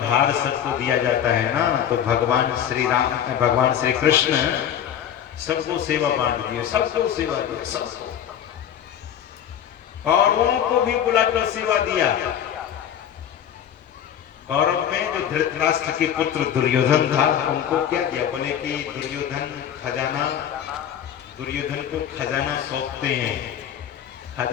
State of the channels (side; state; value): right; quieter; 9.6 dB